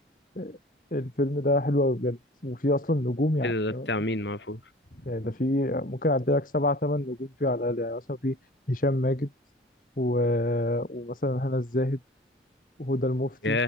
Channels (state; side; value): normal; both; correlation 0.43